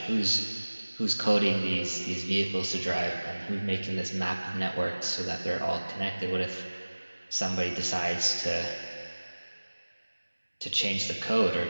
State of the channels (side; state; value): both; inverted; correlation -1.00